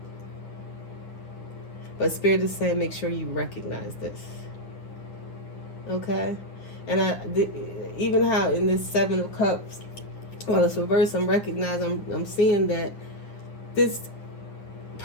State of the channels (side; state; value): right; late; 9.8 ms